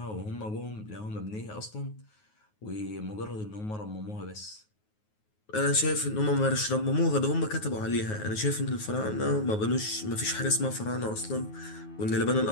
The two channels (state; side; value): late; right; 9.4 ms